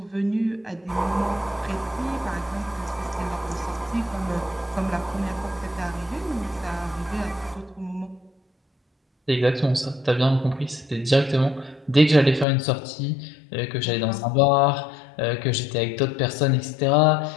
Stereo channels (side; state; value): right; drops out; at 12.5 s